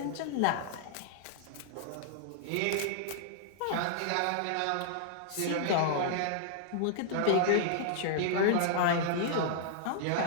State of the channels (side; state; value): both; different; correlation -0.01